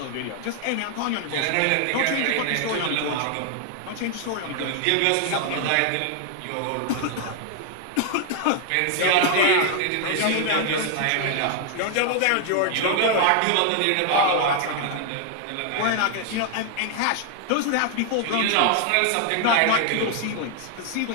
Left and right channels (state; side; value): different; both; correlation 0.00